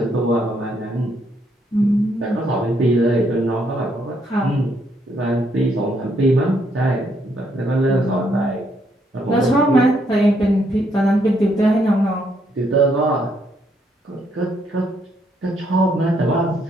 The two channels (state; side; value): normal; both; correlation 0.73